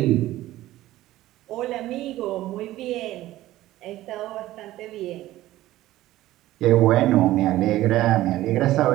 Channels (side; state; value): left; quieter; 15.5 dB